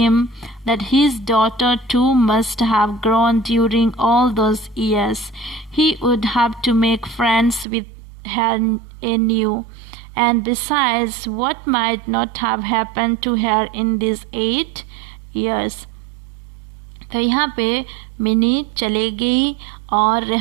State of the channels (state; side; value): drops out; left; at 7.7 s